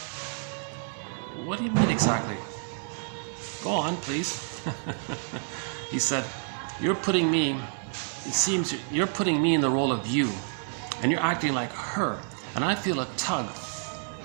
What do you mean exactly? Go on, please. He said, it seems you're putting me in the role of you, and you're acting like her, and I feel a tug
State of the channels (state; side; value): silent; left; 59 dB below the other